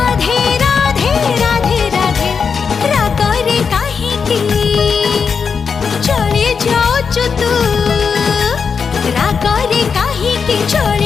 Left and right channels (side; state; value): right; quieter; 5.9 dB